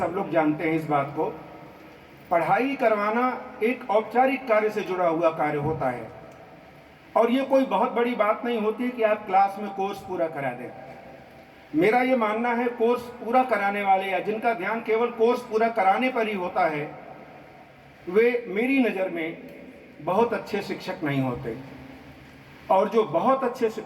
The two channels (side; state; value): both; identical; correlation 1.00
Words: लोग जानते हैं इस बात को। पढ़ाई करवाना एक औपचारिक कार्य से जुड़ा हुआ कार्य होता है और ये कोई बहुत बड़ी बात नहीं होती कि आप क्लास में कोर्स पूरा करा दें। मेरा ये मानना है, कोर्स पूरा कराने वाले या जिनका ध्यान केवल कोर्स पूरा कराने पर ही होता है, वे मेरी नज़र में बहुत अच्छे शिक्षक नहीं होते। और जो बहुत अच्छे